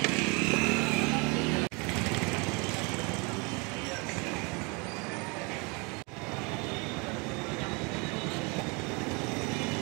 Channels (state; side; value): quieter; left; 30.1 dB